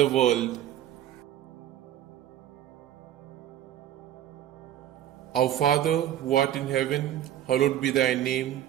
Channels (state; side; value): quieter; left; 11.7 dB